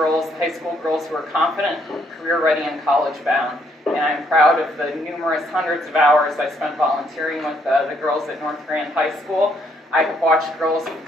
high school girls who are confident, career-ready, and college-bound. And I'm proud of the numerous hundreds of hours I spent volunteering with the girls at North Grand High School. I have watched girls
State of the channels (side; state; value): both; normal; correlation 0.70